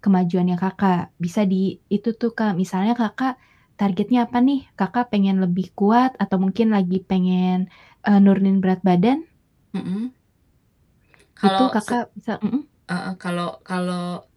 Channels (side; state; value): both; identical; correlation 1.00